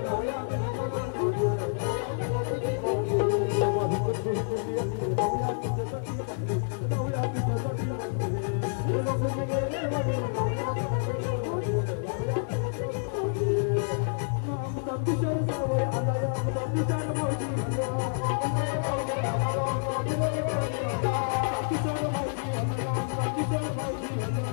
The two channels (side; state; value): right; silent; 59 dB below the other